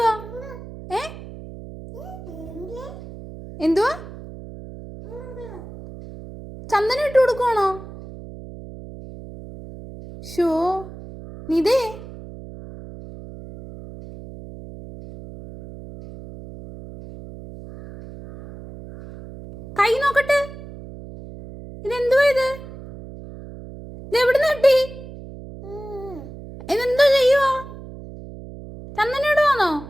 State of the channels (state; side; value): noise; right; hum, 14 dB below the sound